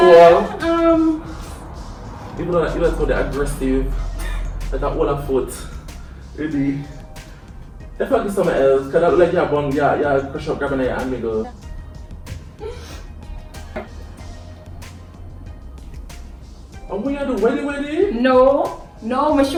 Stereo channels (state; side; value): identical; both; correlation 1.00